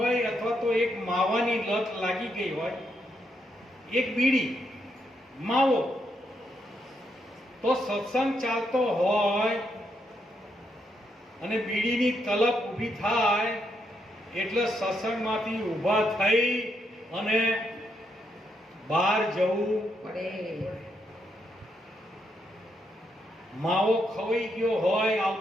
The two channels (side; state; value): both; normal; correlation 0.79